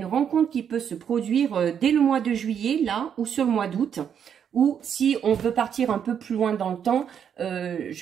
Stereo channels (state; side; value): quieter; left; 8.2 dB